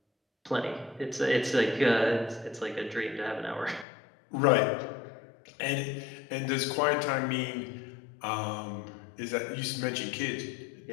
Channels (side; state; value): right; drops out; at 3.9 s